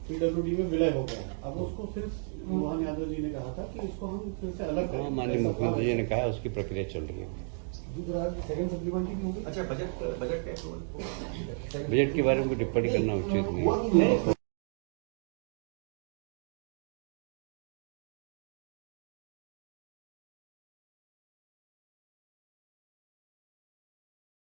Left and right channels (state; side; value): silent; left; 55 dB below the other